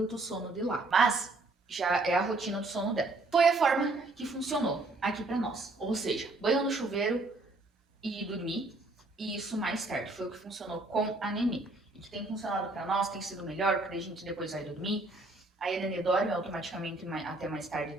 sono de lá. Mas já é a rotina do sono dela. Foi a forma que funcionou aqui pra nós. Ou seja, banho no chuveiro e dormir. E isso mais tarde foi o que funcionou com a Nenê. E que tem funcionado pra nós, tem sido melhor, porque a gente depois vai dormir. Aí a Nenê dorme automaticamente até mais tarde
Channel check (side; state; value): left; quieter; 3.1 dB